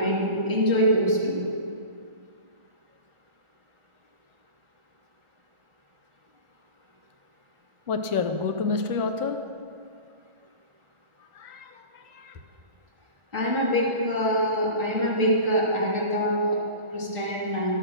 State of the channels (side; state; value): left; late; 1.4 ms